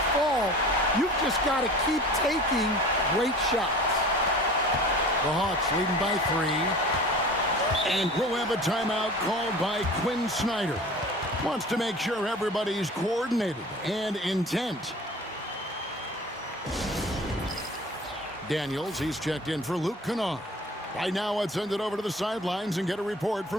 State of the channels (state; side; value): normal; both; correlation 0.41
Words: fall. You've just got to keep taking great shots. The Hawks leading by 3. And we'll have a timeout called by Quinn Snyder. Wants to make sure everybody's coordinated and intent. Daniels, he's checked in for Luke Kennard. Right now, let's send it over to the sidelines and get a report